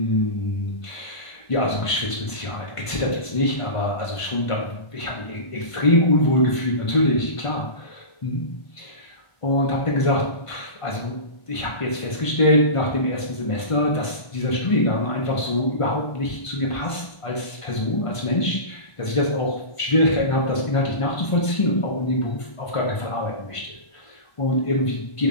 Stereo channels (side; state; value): right; late; 1.5 ms